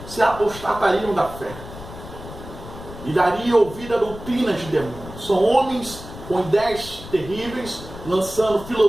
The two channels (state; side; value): noise; left; rumble, 13 dB below the sound